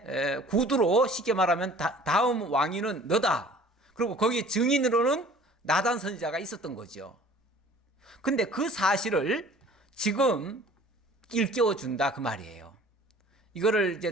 구두로 쉽게 말하면 다음 왕위는 너다. 그리고 거기 증인으로는 나단 선지자가 있었던 거죠. 근데 그 사실을 지금 일깨워 준다 그 말이에요. 이거를 이제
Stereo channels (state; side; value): normal; both; correlation 0.49